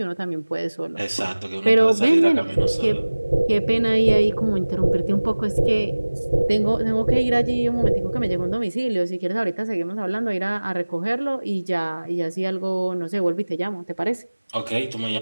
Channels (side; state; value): both; inverted; correlation -1.00